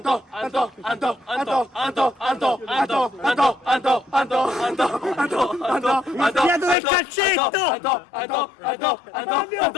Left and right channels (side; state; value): right; drops out; at 6.8 s